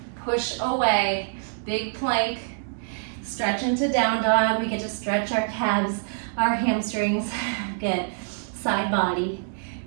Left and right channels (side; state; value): left; silent; digital silence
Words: Push away. Big plank. Stretch into down dog. We get to stretch our calves, our hamstrings. Good. Side body.